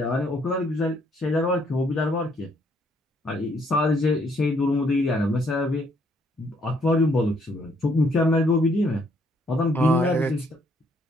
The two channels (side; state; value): both; normal; correlation 0.68